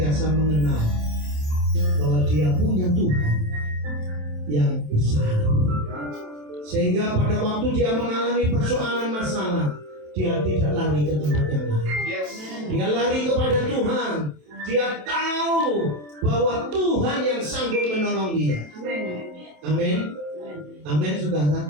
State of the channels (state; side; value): late; left; 27 ms